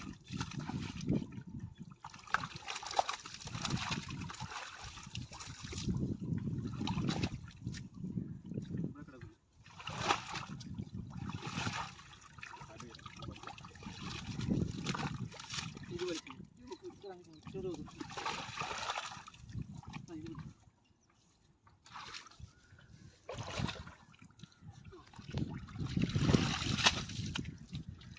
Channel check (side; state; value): both; identical; correlation 1.00